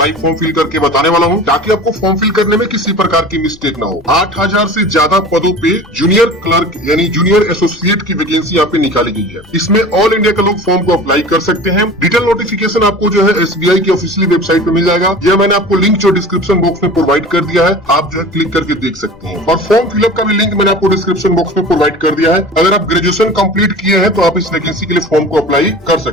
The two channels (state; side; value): noise; left; rumble, 25 dB below the sound